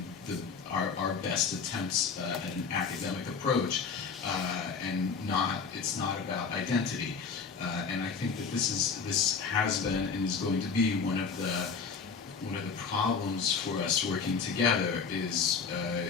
our best attempts at an academic approach, and it's not about identity. And I think that this has been and is going to be one of the problems for us working together is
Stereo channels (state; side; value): quieter; right; 5.5 dB